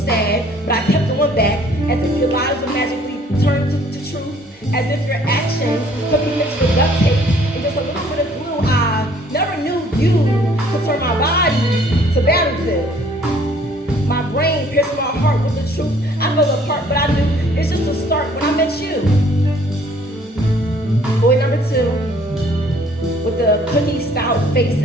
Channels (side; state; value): both; normal; correlation 0.59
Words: sad, but I kept going back as if your lives would magically turn to truth, as if your actions could be mixed with duct tape and just a little bit of glue. I never knew you could turn my body to battlefield. My brain pierced my heart with the truth. I fell apart, but I knew it's just a start when I met you. Boy number 2, with the cookie stout face